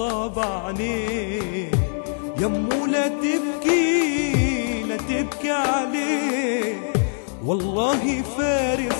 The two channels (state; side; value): silent; right; 63 dB below the other